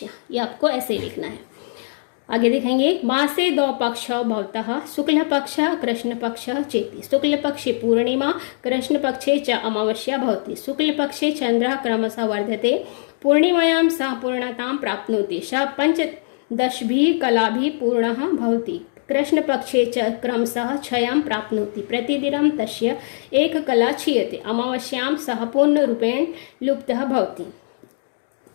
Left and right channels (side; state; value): right; silent; 65 dB below the other